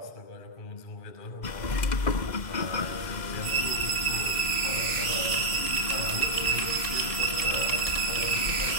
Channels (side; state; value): right; late; 2.1 ms